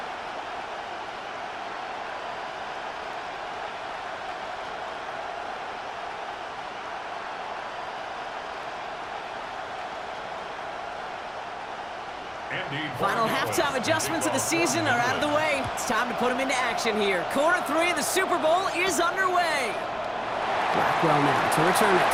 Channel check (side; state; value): both; identical; correlation 1.00